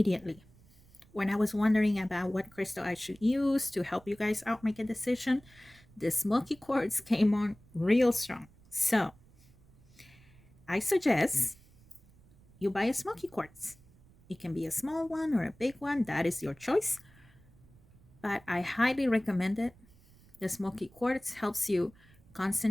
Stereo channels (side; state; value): right; noise; rumble, 27 dB below the sound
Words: when I was wondering about what crystal I should use to help you guys out make a decision. The smoky quartz came on real strong. So I suggest you buy a smoky quartz. It can be a small one or a big one. That is your choice. But I highly recommend it. The smoky quartz helps you